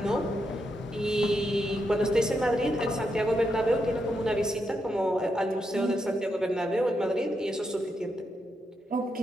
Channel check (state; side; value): normal; both; correlation 0.83